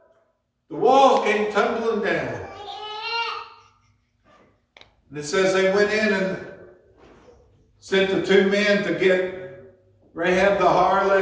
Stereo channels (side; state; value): both; identical; correlation 1.00